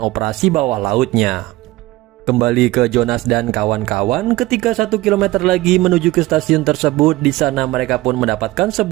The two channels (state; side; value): quieter; left; 18.8 dB